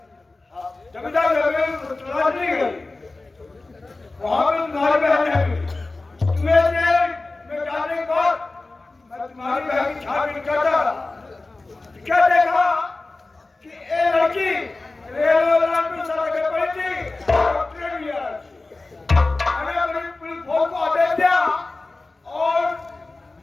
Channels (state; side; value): quieter; right; 3.3 dB